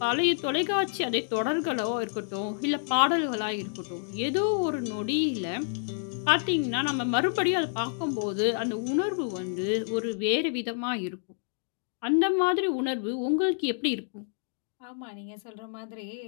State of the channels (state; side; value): silent; right; digital silence